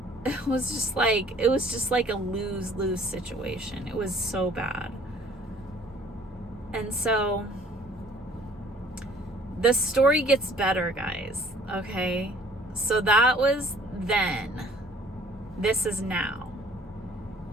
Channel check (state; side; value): normal; both; correlation 0.55